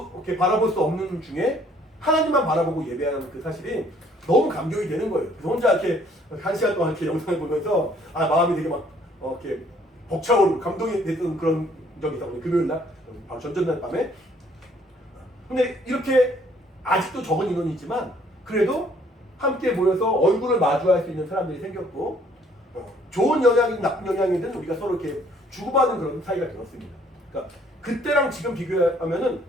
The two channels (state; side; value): normal; both; correlation 0.62